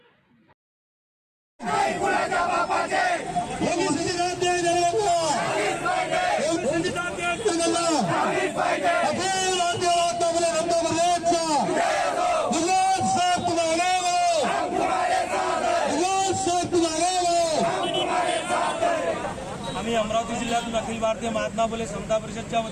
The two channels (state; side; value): identical; both; correlation 1.00